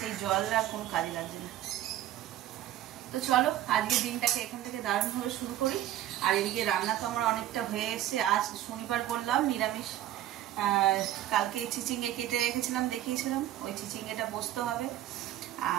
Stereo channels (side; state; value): left; quieter; 13.1 dB